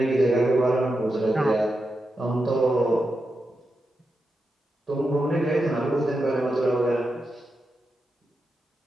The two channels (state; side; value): normal; both; correlation 0.88